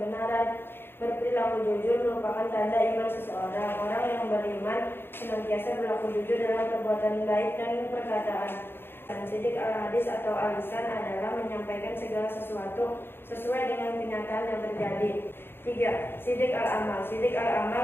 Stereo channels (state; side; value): late; right; 0.10 ms